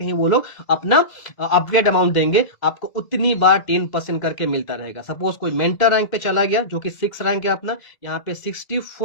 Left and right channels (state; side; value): late; right; 2.0 ms